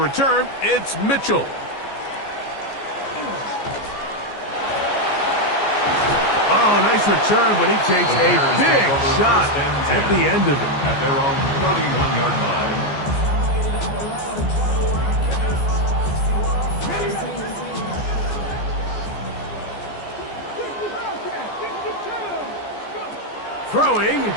it's Mitchell. Oh, nice return, but he takes a big shot at the end of it. At their own 31-yard line. Throwing,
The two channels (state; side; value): late; right; 14 ms